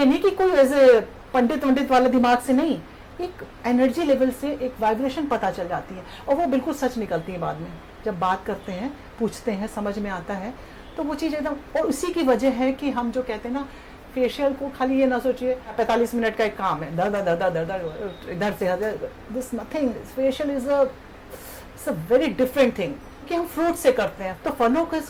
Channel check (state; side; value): identical; both; correlation 1.00